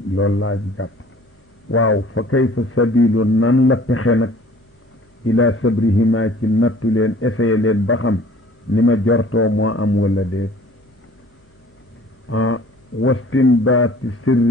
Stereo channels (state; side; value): normal; both; correlation 0.51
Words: loolu laa jàpp waaw fa kayfa sabilu nan la pexe nag ila sabrihima ci nattu leen essayé leen ba xam ni ma jortoo moo am wala déet wastimbaati